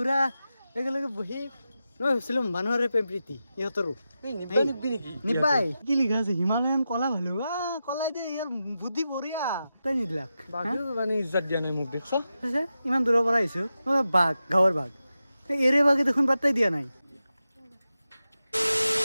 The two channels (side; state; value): both; inverted; correlation -0.91